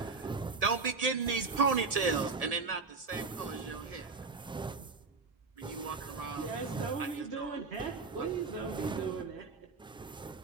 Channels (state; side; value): quieter; left; 4.3 dB